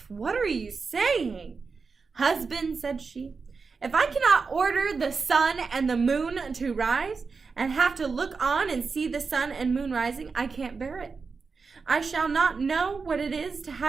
what are you saying? Husband, said she, if I cannot order the sun and the moon to rise, and have to look on and see the sun and moon rising, I can't bear it. I shall not know what it is to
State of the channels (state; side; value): quieter; left; 4.8 dB